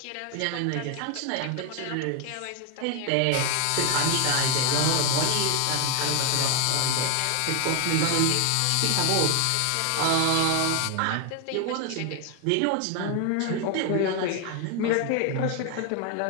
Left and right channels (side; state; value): both; different; correlation 0.01